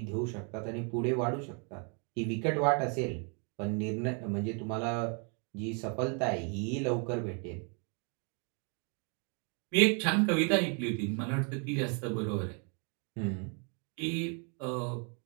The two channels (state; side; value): quieter; left; 38.1 dB